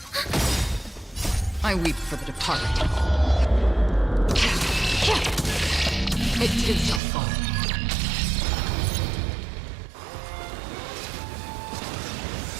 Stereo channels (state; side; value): drops out; left; at 7.0 s